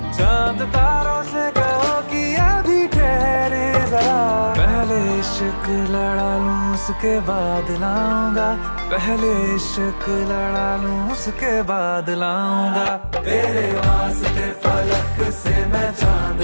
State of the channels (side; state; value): both; inverted; correlation -1.00